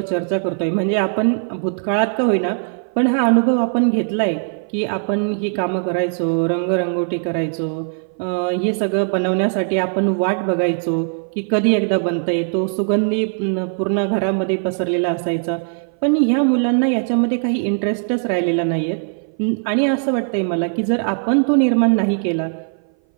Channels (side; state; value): left; silent; 59 dB below the other